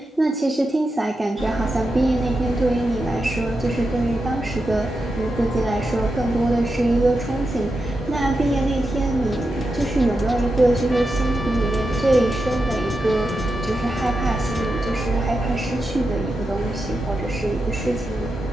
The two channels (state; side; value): normal; both; correlation 0.88